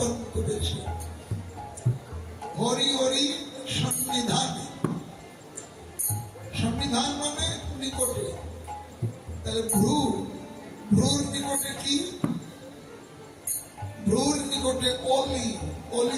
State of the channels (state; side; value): identical; both; correlation 1.00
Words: করেছে। হরি হরি সন্নিধান, সন্নিধান মানে নিকটে। তাহলে ভ্রুর নিকটে কি? ভ্রুর নিকটে অলি, অলি